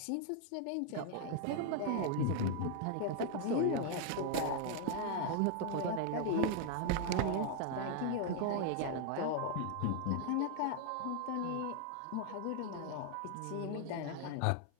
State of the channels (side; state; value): both; different; correlation 0.00